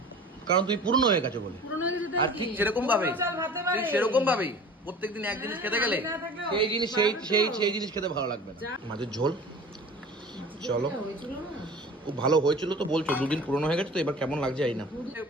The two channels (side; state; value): both; normal; correlation 0.41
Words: কারণ তুমি পূর্ণ হয়ে গেছো বলে। আর ঠিক সেরকম ভাবেই প্রত্যেকদিন এক জিনিস খেতে গেলে সেই জিনিস সেই জিনিস খেতে ভালো লাগবে না। মাছের ঝোল চলো খুব ভালো হয়েছিল তো বলছো, দুদিন পুরনো হয়ে গেছে তো এবার কেমন লাগছে এই না।